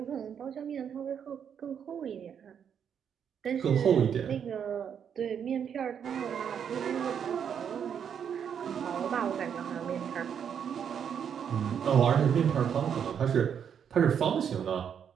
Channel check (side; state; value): left; quieter; 8.0 dB